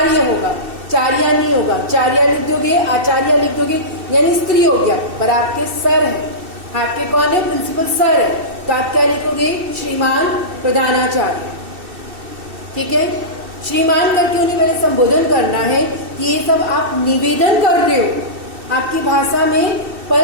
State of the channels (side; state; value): left; late; 2.7 ms